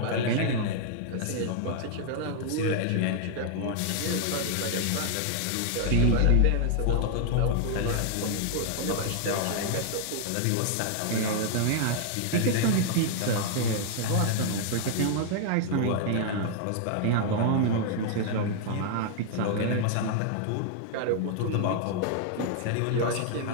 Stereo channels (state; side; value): different; both; correlation 0.00